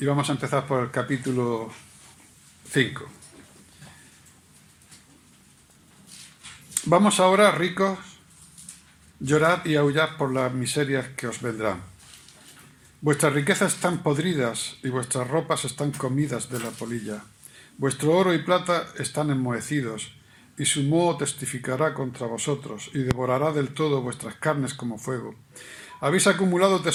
vamos a empezar por el capítulo 5. Vamos ahora, ricos, llorad y aullad por las miserias que os vendrán. Vuestras riquezas están podridas y vuestras ropas están comidas de la polilla. Vuestro oro y plata están enmohecidos, y su moho testificará contra vosotros, y devorará del todo vuestras carnes como fuego. Habéis acumulado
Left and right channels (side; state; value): both; identical; correlation 1.00